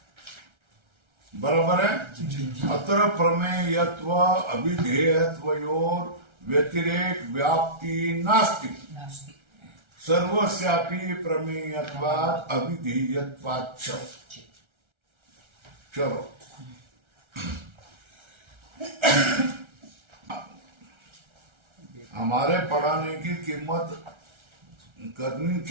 बराबर है? अत्र प्रमेयत्व अभिधेयत्वयोर व्यतिरेक व्याप्ति नास्ति। सर्वस्यापि प्रमेयत्वात् अभिधेयत्वाच्च। चलो हमारे पढ़ाने की कीमत करनी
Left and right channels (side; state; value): left; late; 1.3 ms